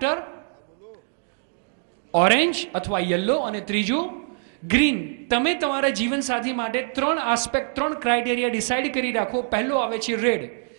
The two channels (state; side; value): silent; left; digital silence